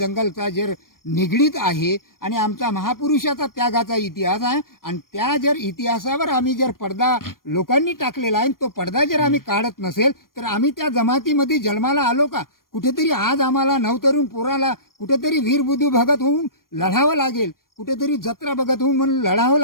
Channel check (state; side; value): late; right; 0.91 ms